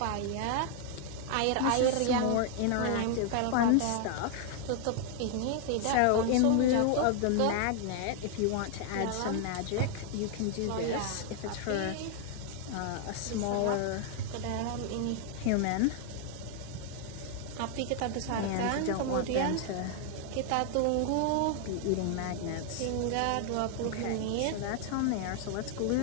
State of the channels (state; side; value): different; both; correlation 0.00